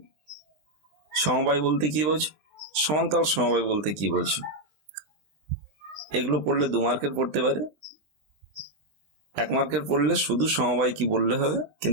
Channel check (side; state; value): left; late; 20 ms